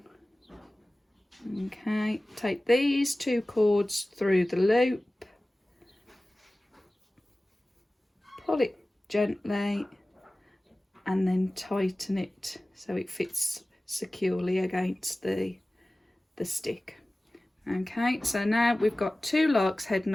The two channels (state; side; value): normal; both; correlation 0.97